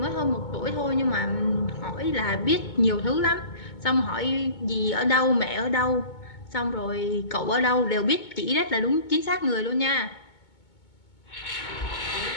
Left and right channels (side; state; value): right; late; 2.2 ms